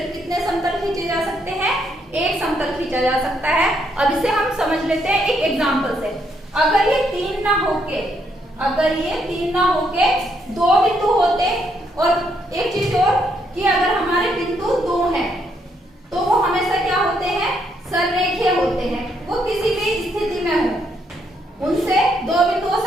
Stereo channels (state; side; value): normal; both; correlation 0.74